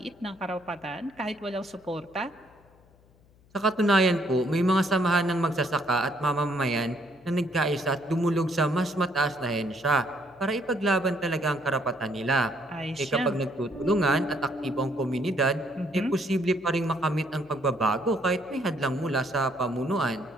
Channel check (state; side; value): noise; left; hum, 29 dB below the sound